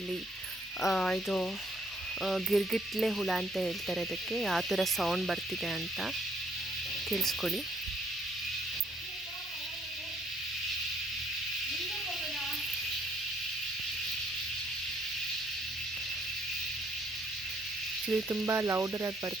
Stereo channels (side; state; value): both; normal; correlation 0.67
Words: ಇಲ್ಲಿ ಇದು ಗಿರ್ಗಿಟ್ಲೆ ಹುಳ ಅಂತ ಹೇಳ್ತಾರೆ ಅದಕ್ಕೆ. ಯಾವ ಥರ ಸೌಂಡ್ ಬರ್ತಿದೆ ಅಂತ ಕೇಳಿಸ್ಕೊಳ್ಳಿ. ಇದು ತುಂಬ ಲೌಡರಾಗಿ